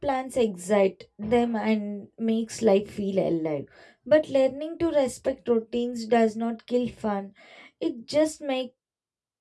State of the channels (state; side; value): identical; both; correlation 1.00